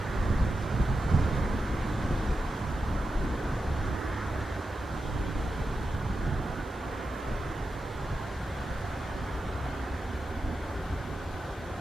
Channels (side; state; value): both; normal; correlation 0.90